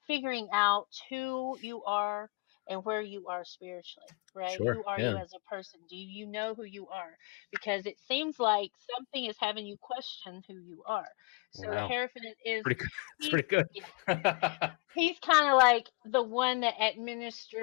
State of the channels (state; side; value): quieter; right; 30.9 dB